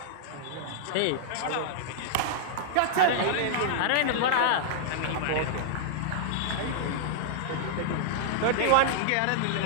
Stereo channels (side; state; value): both; different; correlation -0.01